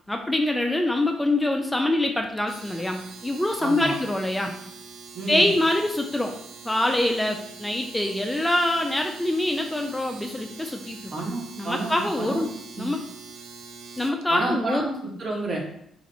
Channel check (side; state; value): both; normal; correlation 0.88